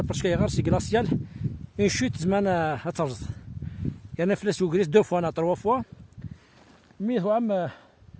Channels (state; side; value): identical; both; correlation 1.00